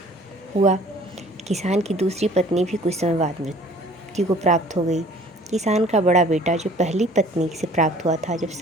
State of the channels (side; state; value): both; normal; correlation 0.52